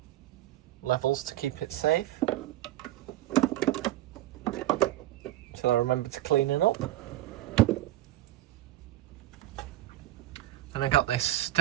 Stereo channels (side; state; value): left; quieter; 14.6 dB